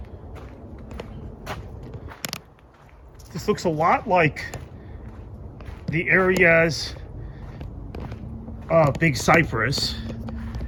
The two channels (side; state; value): both; identical; correlation 1.00